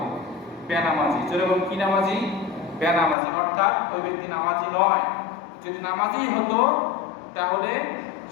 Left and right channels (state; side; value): drops out; right; at 3.2 s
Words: বেনামাজি। যেরকম কি নামাজি? বেনামাজি। অর্থাৎ ওই ব্যক্তি নামাজি নয়। যদি নামাজি হতো তাহলে